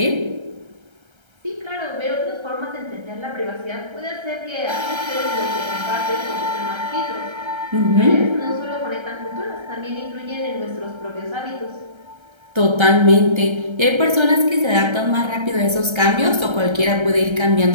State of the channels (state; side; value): late; left; 1.3 ms